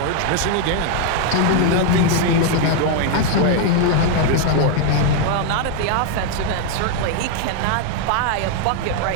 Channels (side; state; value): both; different; correlation 0.00